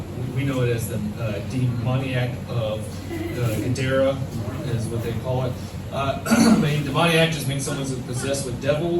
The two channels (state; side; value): identical; both; correlation 1.00